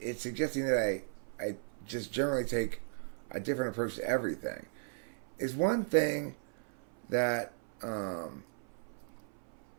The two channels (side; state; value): left; silent; 54 dB below the other